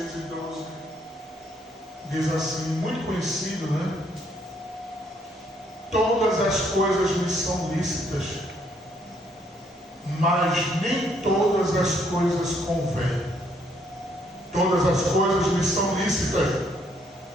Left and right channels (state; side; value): normal; both; correlation 0.69